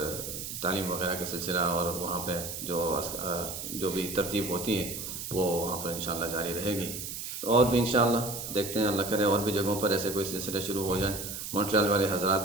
تعلیم وغیرہ کا سلسلہ اور وہاں پہ جو بھی ترتیب ہوتی ہے وہ وہاں پر انشاءاللہ جاری رہے گی۔ اور بھی انشاءاللہ دیکھتے ہیں، اللہ کرے اور بھی جگہوں پر ایسے کوئی سلسلہ شروع ہو جائیں، مونٹریال والے حضرات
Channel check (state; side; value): noise; right; hiss, 7 dB below the sound